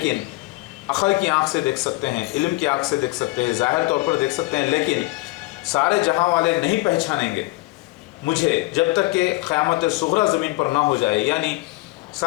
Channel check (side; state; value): right; quieter; 21.1 dB